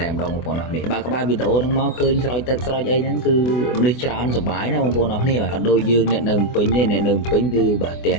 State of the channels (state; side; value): late; right; 24 ms